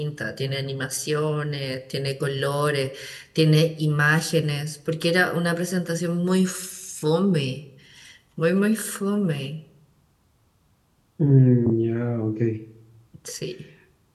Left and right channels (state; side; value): identical; both; correlation 1.00